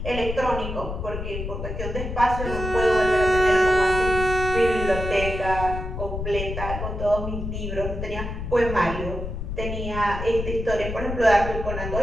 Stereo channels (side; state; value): left; noise; rumble, 5 dB below the sound